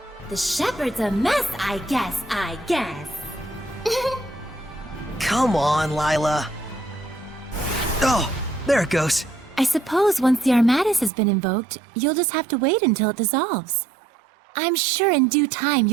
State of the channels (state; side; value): drops out; left; at 11.1 s